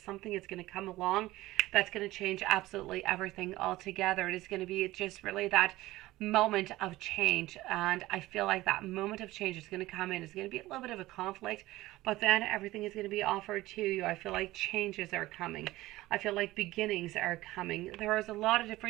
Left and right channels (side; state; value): left; quieter; 17.6 dB